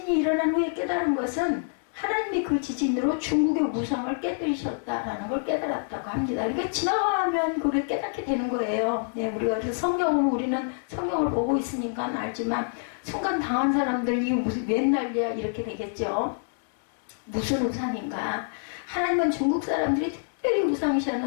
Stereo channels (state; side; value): silent; right; digital silence